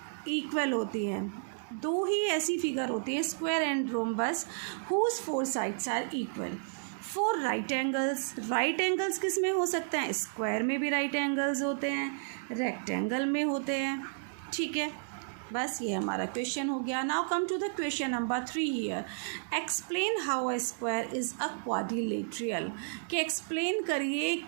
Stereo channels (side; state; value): left; silent; digital silence